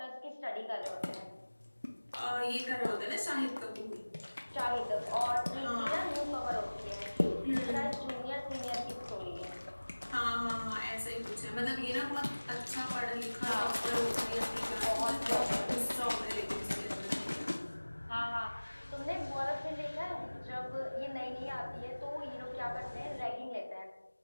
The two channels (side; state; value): both; inverted; correlation -1.00